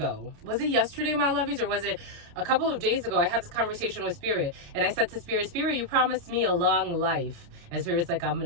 Was it yesterday, my lovies, or was it a couple of days ago? I had this conversation with Spirit, and I said to Spirit, you promised me a long life. And Spirit's like, I'm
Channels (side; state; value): left; late; 29 ms